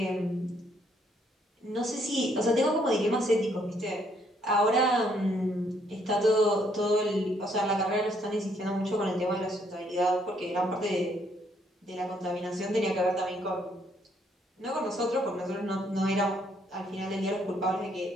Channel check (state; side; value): normal; both; correlation 0.69